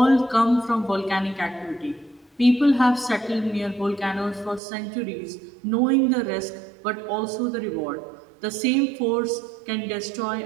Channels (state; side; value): drops out; left; at 4.6 s